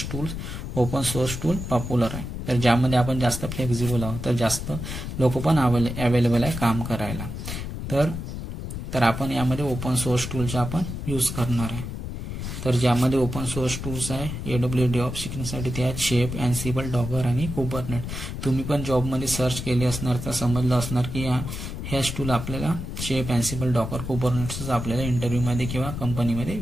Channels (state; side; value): noise; left; rumble, 6 dB below the sound